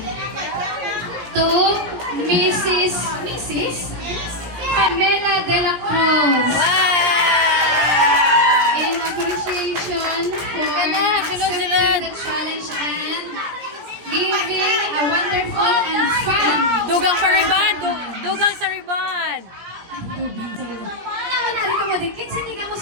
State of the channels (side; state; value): left; late; 17 ms